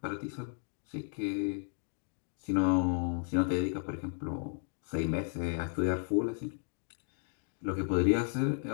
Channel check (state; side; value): silent; right; 55 dB below the other